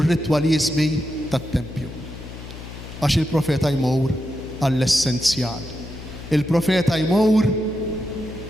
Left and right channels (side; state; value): left; noise; hum, 13 dB below the sound